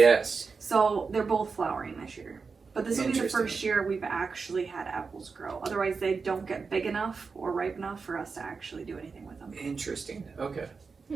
So they're both flowering this year. But this will be the first year we've actually had apples grow. Otherwise, they don't get big enough or ripe enough for us to actually do anything with them. Interesting. Okay.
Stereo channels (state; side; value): quieter; left; 4.9 dB